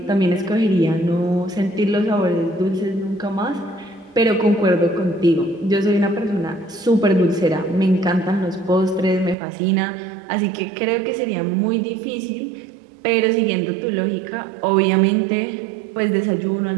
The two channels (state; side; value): drops out; left; at 9.3 s